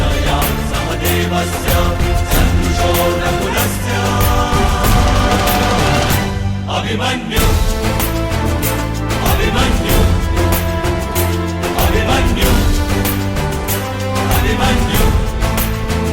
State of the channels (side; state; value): both; identical; correlation 1.00